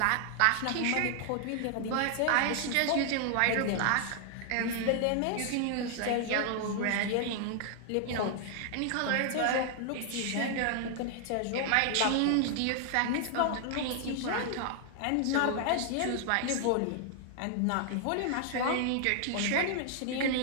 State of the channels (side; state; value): both; different; correlation 0.00